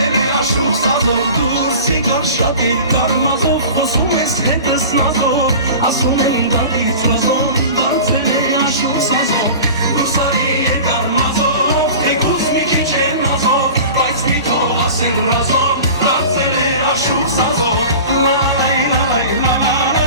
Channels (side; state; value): both; inverted; correlation -0.37